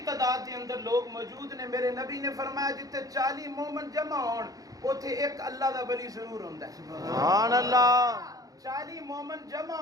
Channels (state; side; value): late; left; 0.17 ms